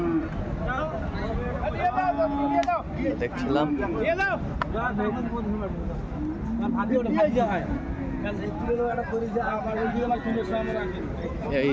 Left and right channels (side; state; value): both; identical; correlation 1.00